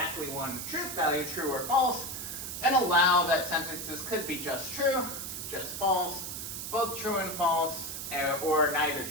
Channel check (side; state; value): right; noise; hiss, 6 dB below the sound